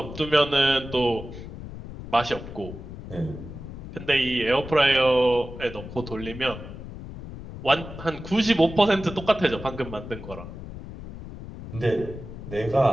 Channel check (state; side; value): noise; left; rumble, 12 dB below the sound